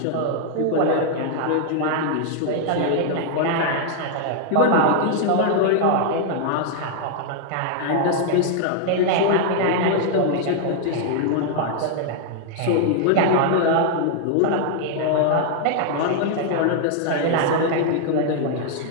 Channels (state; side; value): different; both; correlation -0.01